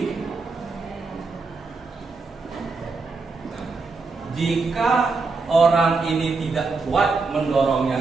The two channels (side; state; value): left; quieter; 4.1 dB